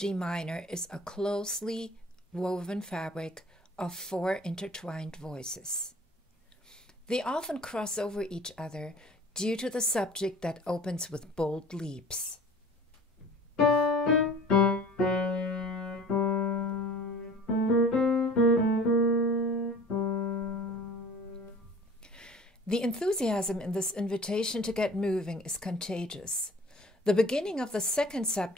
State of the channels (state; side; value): normal; both; correlation 0.45